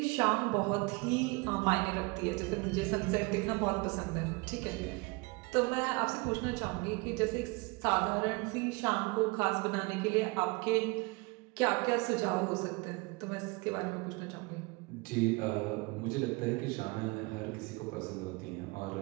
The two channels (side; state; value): left; quieter; 26.5 dB